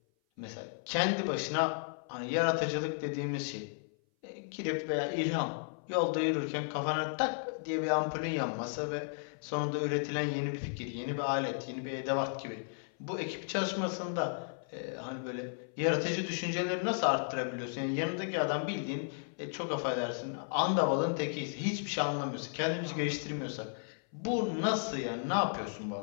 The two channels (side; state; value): right; silent; 55 dB below the other